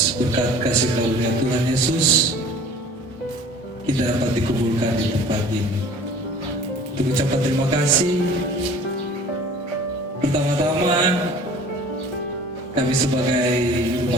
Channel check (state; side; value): normal; both; correlation 0.46